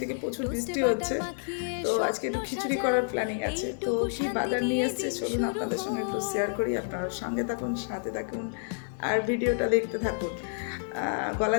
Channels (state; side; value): silent; right; digital silence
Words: থেকে প্রচুর বৃষ্টি হচ্ছে, তো আজকে একটু খিচুড়ি করার প্ল্যানিং আছে। তো কি বাজার নিয়ে এসছে চলুন আপনাদের সঙ্গে একটু শেয়ার করি। আপনারা সঙ্গে থাকুন, সাথে থাকুন আর ভিডিওটা দেখতে থাকুন। গলা